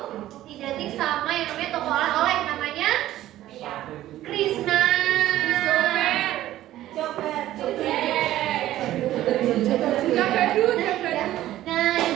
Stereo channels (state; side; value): quieter; left; 14.0 dB